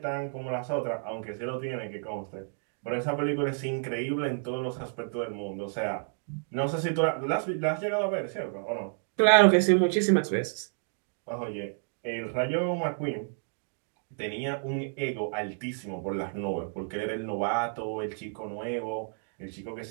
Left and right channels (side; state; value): left; silent; 58 dB below the other